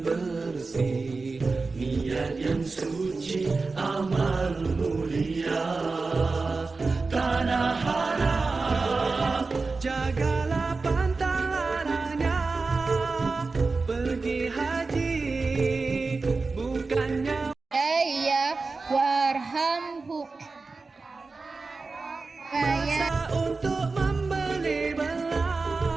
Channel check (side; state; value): left; quieter; 4.0 dB